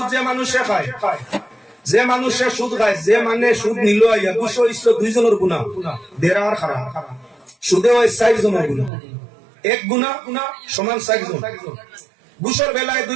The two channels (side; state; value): left; drops out; at 8.9 s